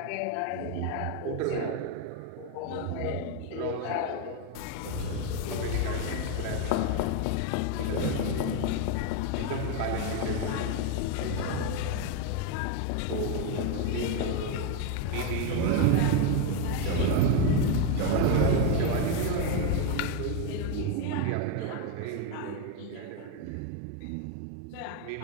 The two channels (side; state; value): both; different; correlation 0.02